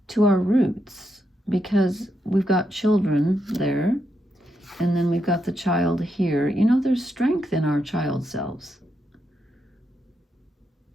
to our roots, because we've got children there, and then we've got the child here. You know, there's strength in our child selves.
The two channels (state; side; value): normal; both; correlation 0.82